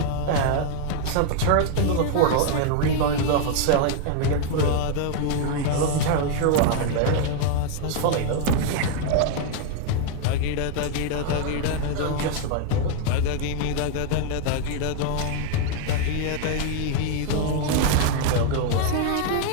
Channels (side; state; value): both; different; correlation 0.00